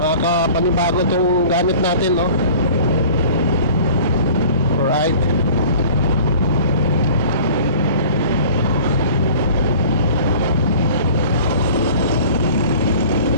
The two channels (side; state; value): both; inverted; correlation -0.46